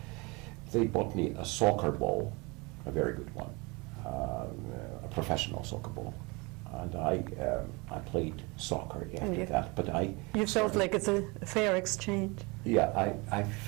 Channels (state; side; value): quieter; left; 27.0 dB